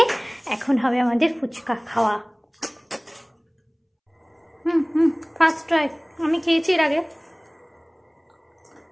এখন হবে আমাদের ফুচকা খাওয়া। ফার্স্ট ট্রাই, আমি খেয়েছি এর আগে।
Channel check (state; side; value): identical; both; correlation 1.00